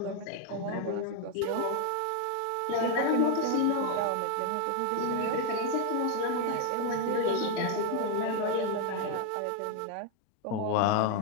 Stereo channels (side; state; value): both; different; correlation 0.01